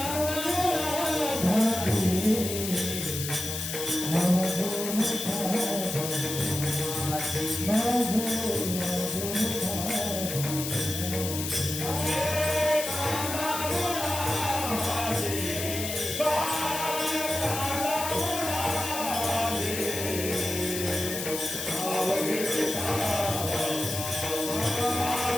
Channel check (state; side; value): noise; left; hiss, 5 dB below the sound